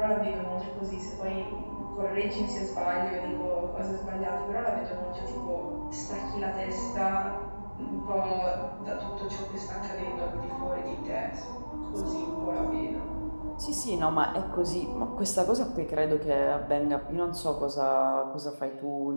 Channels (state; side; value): inverted; both; correlation -1.00